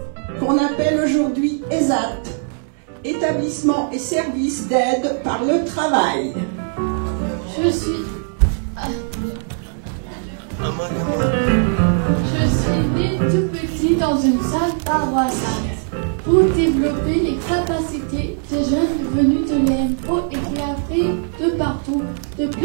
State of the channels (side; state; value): left; silent; digital silence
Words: qu'on appelle aujourd'hui ESAT, Établissement et Services d'aide par le travail. Je suis né tout petit dans une salle paroissiale pour développer les capacités des jeunes venus de l'IMPRO et qui arrivent de partout, de